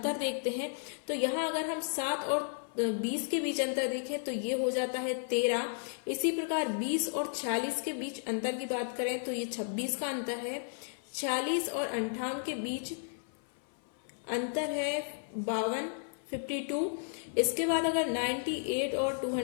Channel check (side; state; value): right; silent; 55 dB below the other